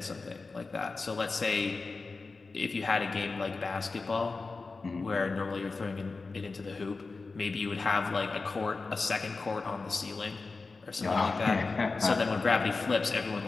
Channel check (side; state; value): right; quieter; 4.0 dB